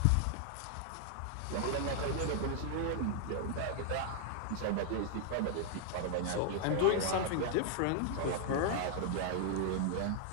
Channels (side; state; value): both; different; correlation 0.00